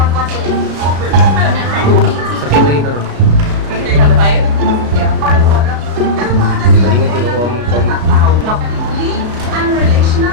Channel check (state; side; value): late; left; 34 ms